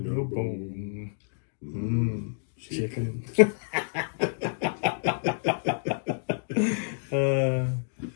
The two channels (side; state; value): right; silent; digital silence